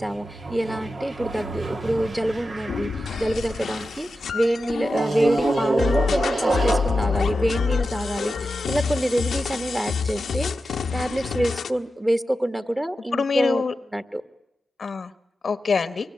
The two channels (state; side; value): normal; both; correlation 0.91